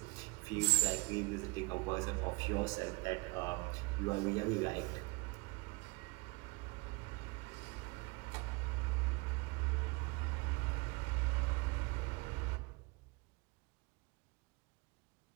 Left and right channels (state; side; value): quieter; left; 27.0 dB